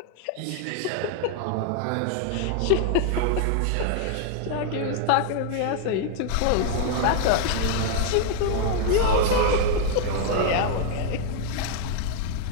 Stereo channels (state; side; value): different; both; correlation 0.00